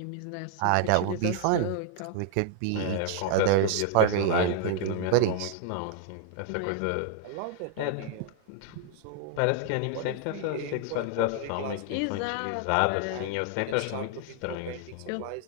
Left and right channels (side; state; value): both; different; correlation 0.00